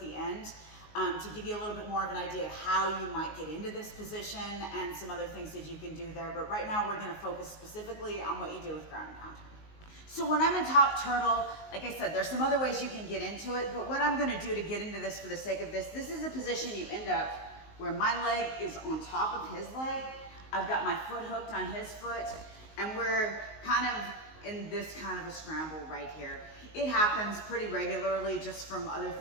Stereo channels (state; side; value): late; right; 19 ms